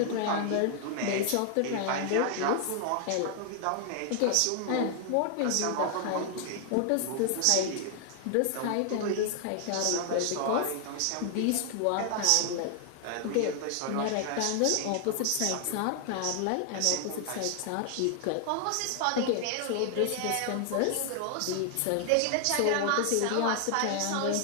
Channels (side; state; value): both; different; correlation 0.00